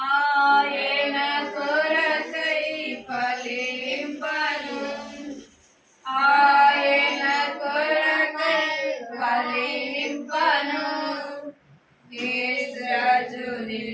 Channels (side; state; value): both; identical; correlation 1.00